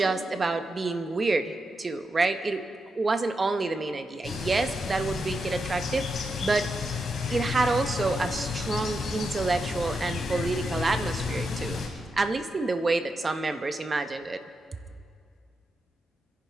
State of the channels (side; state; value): both; normal; correlation 0.86